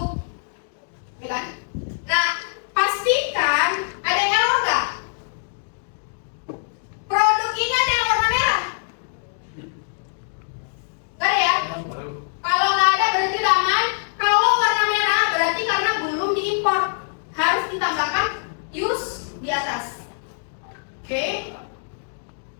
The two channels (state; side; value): silent; right; digital silence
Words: ya kan? Nah, pastikan ada error nggak? Produk ini ada yang warna merah? Nggak ada ya? Kalau nggak ada berarti udah aman. Kalau warna merah berarti karena belum diimpor, harus ditambahkan use di atas. Oke?